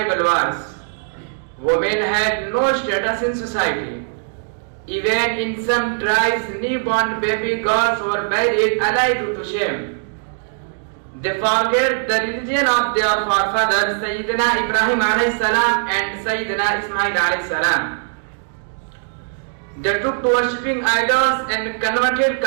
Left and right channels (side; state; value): left; silent; digital silence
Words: wars. Women had no status in society. Even in some tribes, newborn baby girls were buried alive due to shame. They forget the religion of their forefathers, Sayyidina Ibrahim alayhi salam and Sayyidina Ismail alayhi salam. They took to worshipping idols and converted